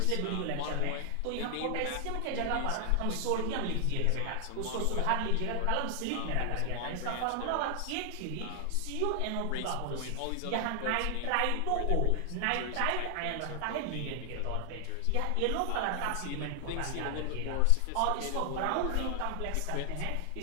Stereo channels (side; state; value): both; different; correlation 0.00